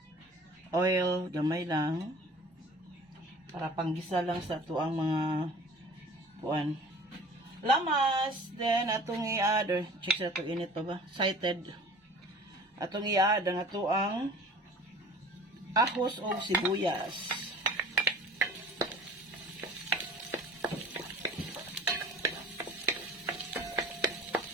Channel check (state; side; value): normal; both; correlation 0.45